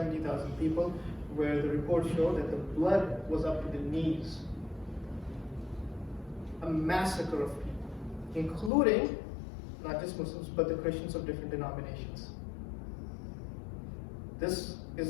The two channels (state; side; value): drops out; right; at 8.7 s